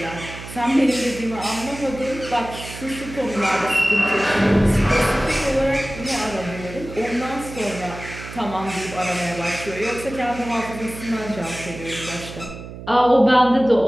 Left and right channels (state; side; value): noise; right; hum, 12 dB below the sound